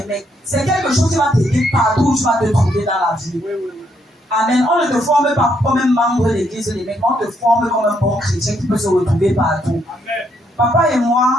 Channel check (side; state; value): both; normal; correlation 0.74